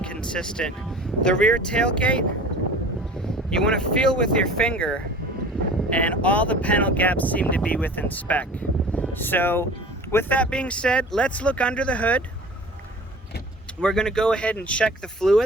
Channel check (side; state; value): both; normal; correlation 0.42